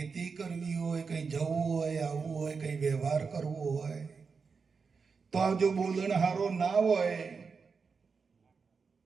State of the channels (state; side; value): quieter; left; 5.2 dB